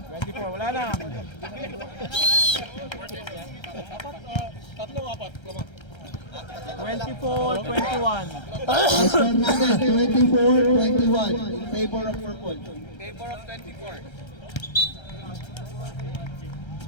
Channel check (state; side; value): late; right; 1.3 ms